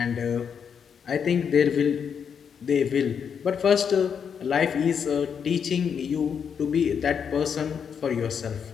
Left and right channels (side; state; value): right; quieter; 7.1 dB